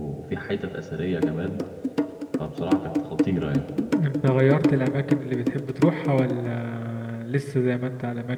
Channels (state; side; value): identical; both; correlation 1.00